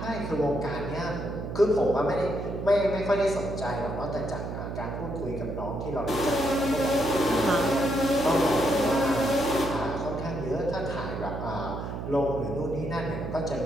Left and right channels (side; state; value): right; noise; hum, 6 dB below the sound